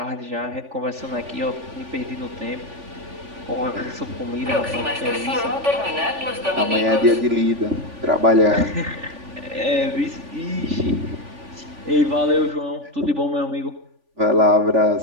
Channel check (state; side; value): late; left; 3.5 ms